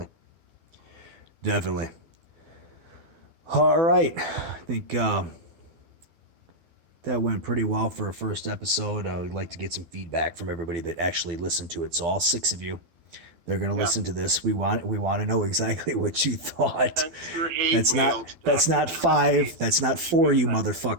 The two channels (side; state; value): left; late; 12 ms